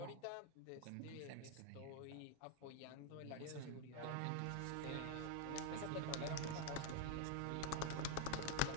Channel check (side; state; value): both; different; correlation 0.00